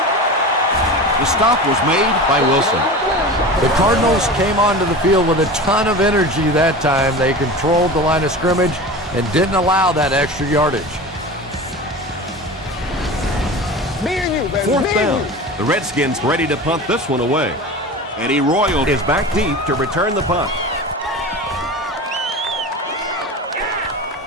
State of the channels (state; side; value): normal; both; correlation 0.32